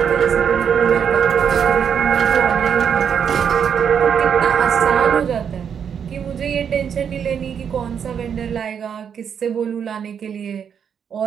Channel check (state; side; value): quieter; left; 7.7 dB